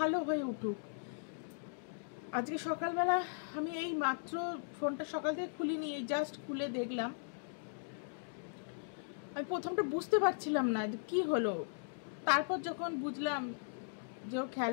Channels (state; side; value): silent; right; digital silence